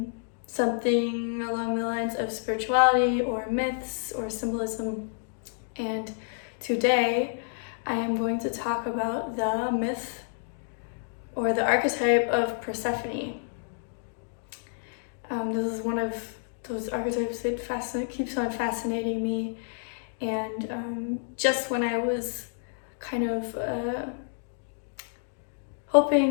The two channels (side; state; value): right; silent; digital silence